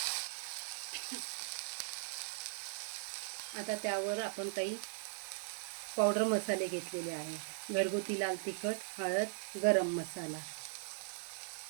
आता त्यावर आपण काही पावडर मसाले घेतलेले आहे। घरगुती लाल तिखट, हळद, गरम मसाला।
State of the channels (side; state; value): left; silent; 52 dB below the other